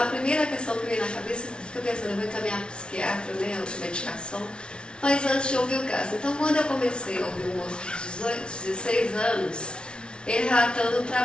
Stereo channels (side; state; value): right; late; 0.056 ms